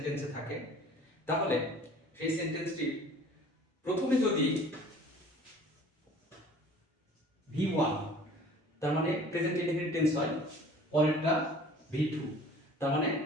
থাকে তাহলে সেই সেন্টেন্সটি প্রথমে যদি V1 তার মানে প্রেজেন্ট ইনডেফিনিট টেন্স হয়, পরেরটা V2 তার মানে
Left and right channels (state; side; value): normal; both; correlation 0.48